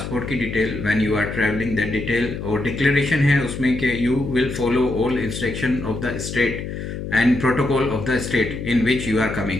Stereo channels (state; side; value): noise; left; hum, 7 dB below the sound